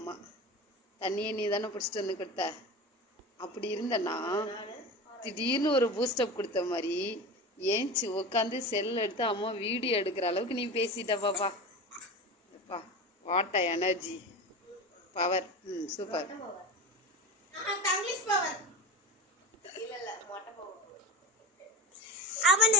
தண்ணியை நீ தானே பிடிச்சிட்டு வந்து கொடுத்த. அப்படி இருந்தனா திடீர்னு ஒரு பூஸ்டப் கொடுத்த மாதிரி ஏஞ்சி உட்காந்து செல் எடுத்து அம்மா வீடியோ எடுக்கிற அளவுக்கு நீ பேசிட்ட பாப்பா. What energy power. Super.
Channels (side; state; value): both; normal; correlation 0.27